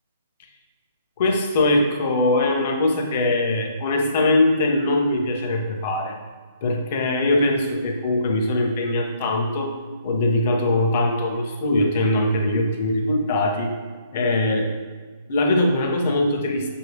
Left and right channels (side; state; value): both; inverted; correlation -0.65